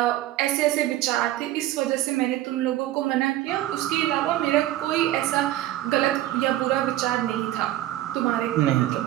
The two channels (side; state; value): left; quieter; 14.5 dB